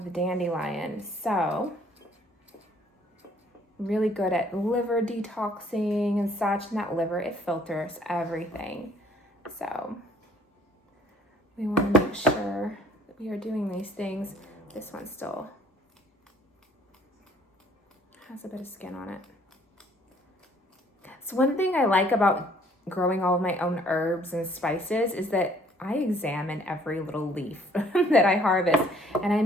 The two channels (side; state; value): both; normal; correlation 0.59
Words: the dandelion. So really good at liver detoxing and such. And that liver, it filters everything. So we want to make sure that we are doing these things. This one still has a bit of skin on it. So one thing I like about growing all of my own herbs and spices is that I examine every little leaf that I harvest and I